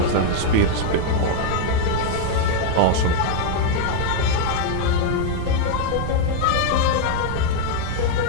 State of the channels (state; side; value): different; both; correlation 0.01